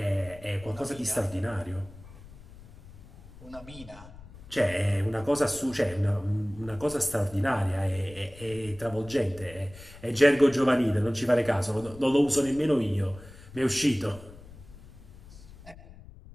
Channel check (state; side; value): noise; left; rumble, 19 dB below the sound